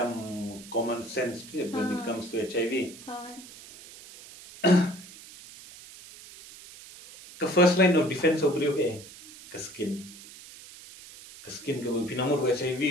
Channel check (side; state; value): right; noise; hiss, 18 dB below the sound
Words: common sense when it comes to HIV ke first line of defense obrio ke skin ke pinamur